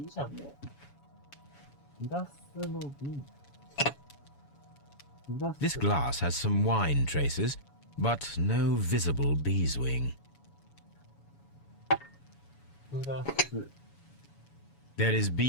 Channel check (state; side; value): late; right; 7.1 ms